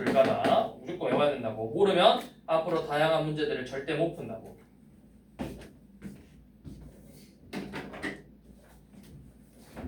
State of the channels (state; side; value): identical; both; correlation 1.00